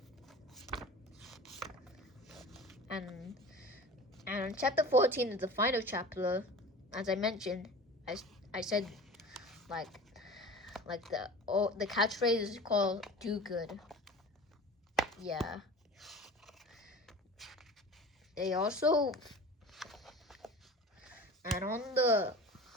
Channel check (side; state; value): both; normal; correlation 0.38